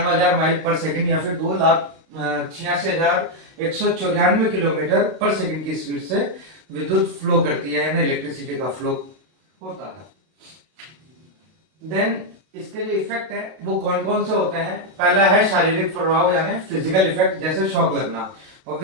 माइल पर सेकंड या फिर 2,86,194 किलोमीटर पर सेकंड की स्पीड से विद्युत फ्लो करती है, यानी इलेक्ट्रिसिटी का फ्लो होता है। देन इसके जो इफेक्ट है वो कौन कौन से होते हैं। पहला है शारीरिक प्रभाव, यानी फिजिकल इफेक्ट, जैसे शॉक लगना।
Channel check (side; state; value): left; late; 32 ms